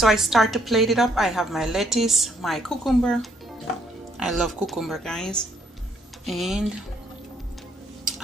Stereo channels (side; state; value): both; normal; correlation 0.69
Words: I start to plate it up. I have my lettuce, my cucumber. I love cucumber guys. And